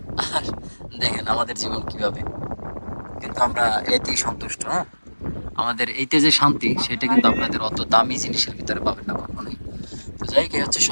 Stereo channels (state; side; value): inverted; both; correlation -1.00